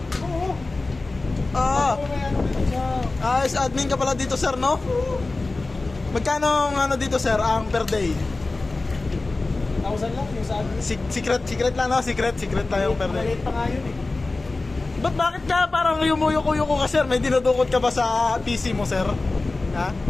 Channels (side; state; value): right; quieter; 3.3 dB